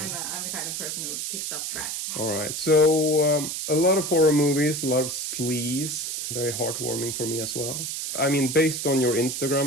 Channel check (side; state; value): right; noise; hiss, 4 dB below the sound